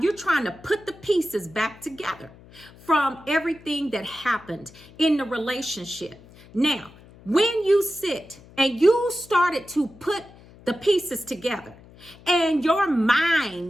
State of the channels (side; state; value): left; noise; hum, 23 dB below the sound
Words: you're trying to put the pieces back together from everything that happened in the relationship. Now, when you sit and you started to put the pieces together, and your